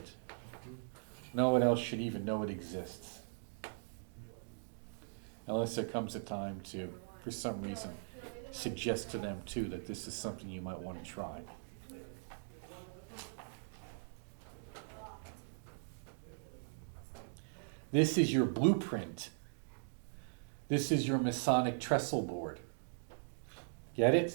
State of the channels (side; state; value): left; silent; digital silence